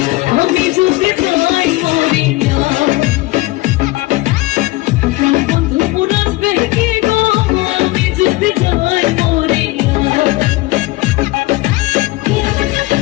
আমি যদি যাই মরি বন্ধু মোর আসবে কি গো আমি যদি যাই মরি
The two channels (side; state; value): right; quieter; 20.3 dB